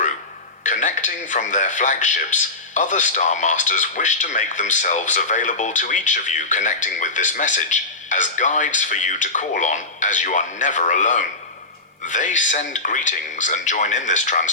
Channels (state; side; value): quieter; right; 3.2 dB